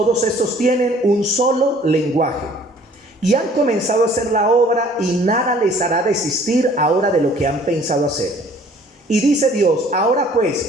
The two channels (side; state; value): both; normal; correlation 0.55